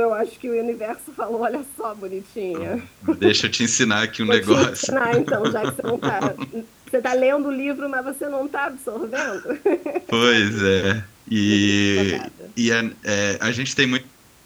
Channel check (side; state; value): both; identical; correlation 1.00